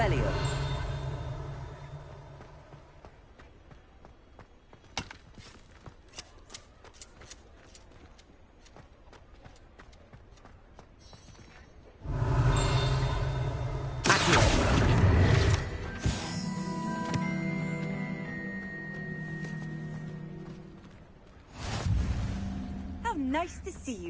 How nice to see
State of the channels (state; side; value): identical; both; correlation 1.00